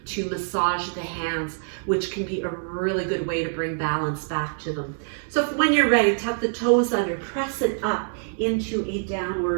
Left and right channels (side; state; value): left; silent; digital silence